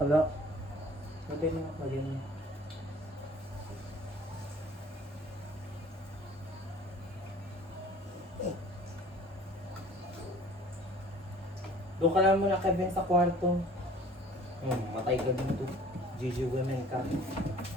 Madali na, madali na. Doon ka lang muna, Kevin, sa kwarto. Matay ka dito. GG women ka.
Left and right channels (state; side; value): normal; both; correlation 0.49